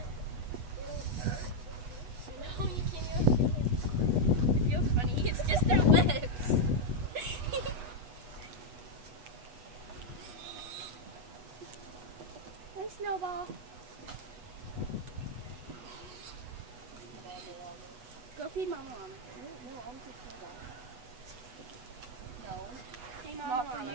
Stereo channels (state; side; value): late; left; 8.2 ms